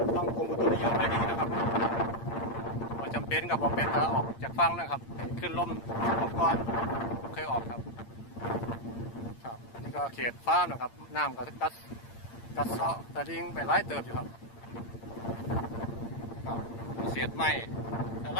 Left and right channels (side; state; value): right; late; 8.7 ms